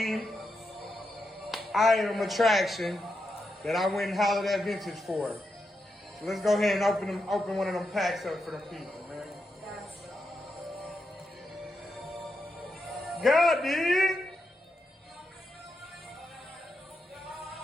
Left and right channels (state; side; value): normal; both; correlation 0.85